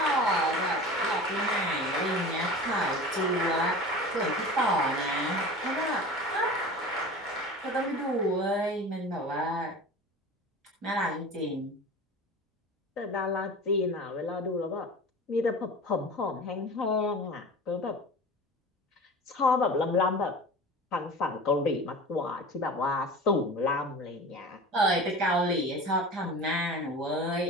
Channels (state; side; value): normal; both; correlation 0.35